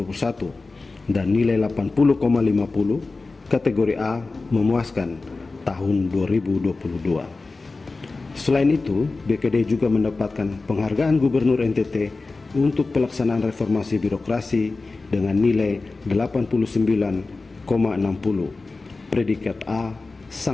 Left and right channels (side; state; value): right; quieter; 3.6 dB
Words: dan nilai 80,50 kategori A memuaskan tahun 2022. Selain itu, BKD juga mendapatkan penghargaan Gubernur NTT untuk pelaksanaan reformasi birokrasi dengan nilai 89,60 predikat A